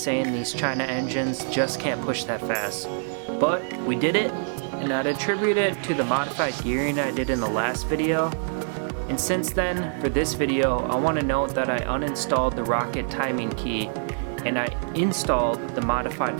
these China engines just can't push that fast. But we did it, and I'd attribute it to the modified gearing I did in the last video. And since then, for this video, I want to note that I uninstalled the rocket timing key and I installed the modified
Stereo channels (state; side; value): silent; left; digital silence